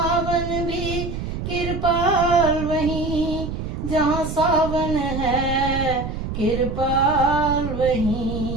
भी कृपाल वहीं, जहाँ सावन है कृपाल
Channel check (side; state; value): right; noise; rumble, 5 dB below the sound